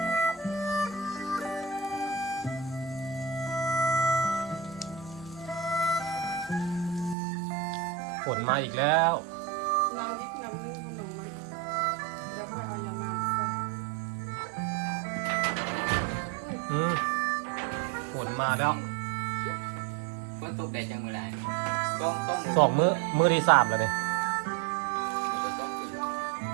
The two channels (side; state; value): left; drops out; at 7.2 s